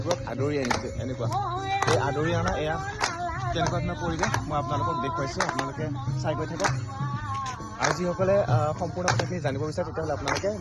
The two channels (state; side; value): identical; both; correlation 1.00